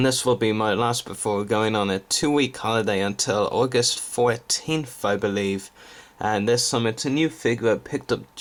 this will be my last before going on a 2-week holiday until August 14th I believe. And this time it's a new figure I picked up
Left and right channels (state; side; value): identical; both; correlation 1.00